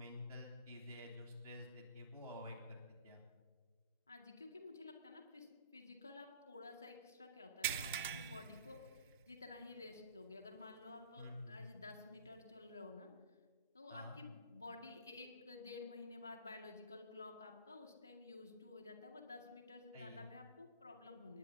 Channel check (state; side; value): inverted; both; correlation -0.44